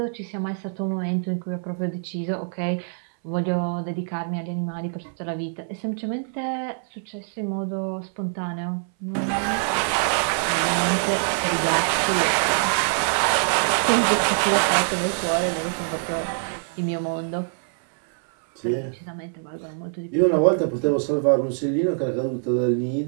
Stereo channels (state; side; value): silent; left; 61 dB below the other